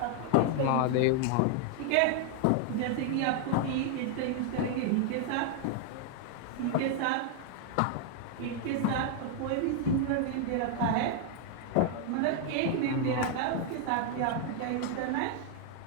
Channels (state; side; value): different; both; correlation 0.00